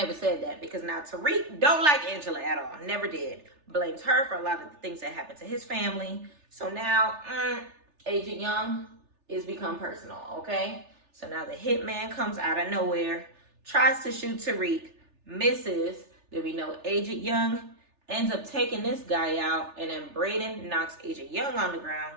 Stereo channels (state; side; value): late; left; 3.4 ms